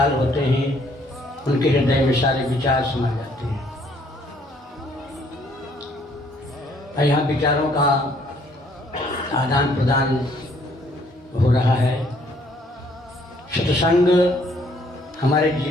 होते हैं उनके हृदय में सारे विचार समा जाते हैं। और यहाँ विचारों का आदान प्रदान हो रहा है। सत्संग हमारे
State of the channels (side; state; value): both; normal; correlation 0.64